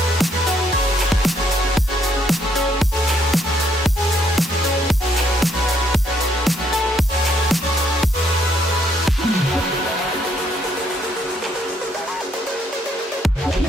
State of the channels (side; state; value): both; normal; correlation 0.70